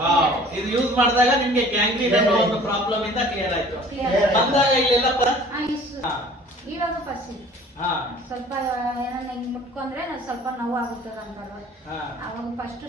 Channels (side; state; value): both; normal; correlation 0.49